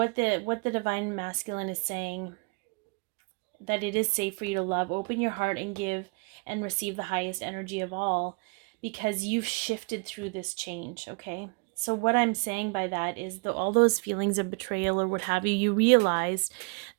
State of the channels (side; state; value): left; quieter; 31.9 dB